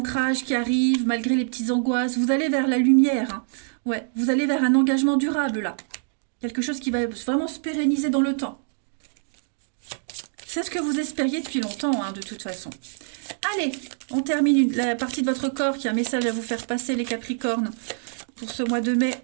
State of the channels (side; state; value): left; silent; digital silence